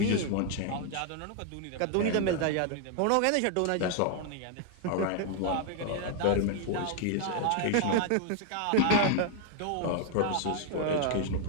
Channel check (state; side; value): different; both; correlation 0.00